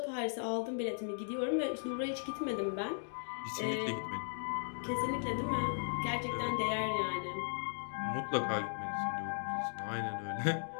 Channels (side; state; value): right; silent; digital silence